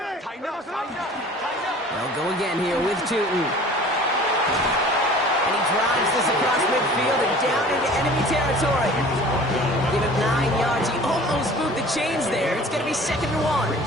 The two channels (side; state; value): both; normal; correlation 0.46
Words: They'll go again here with Tutin. And he drives this across midfield and down into enemy territory. Give him 9 yards. He almost moved the chains there. It's going to be 2nd and 1.